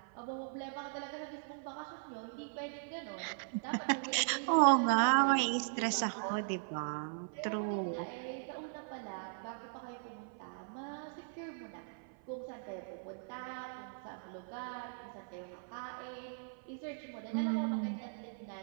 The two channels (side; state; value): left; silent; 52 dB below the other